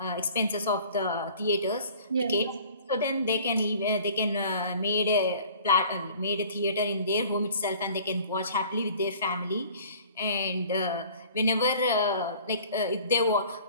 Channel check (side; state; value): both; inverted; correlation -0.49